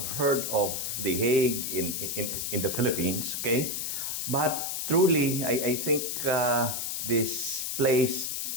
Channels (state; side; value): noise; left; hiss, 2 dB below the sound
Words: heard of the Hague in the Philippines, okay? But truly, I think this place